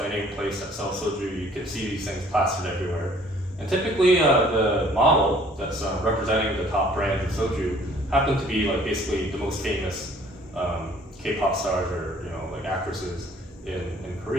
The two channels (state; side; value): normal; both; correlation 0.57